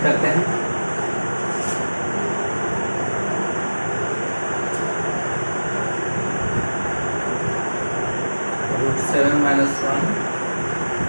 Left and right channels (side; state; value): both; inverted; correlation -1.00